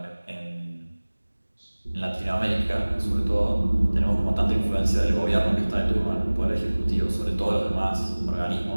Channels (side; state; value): both; inverted; correlation -1.00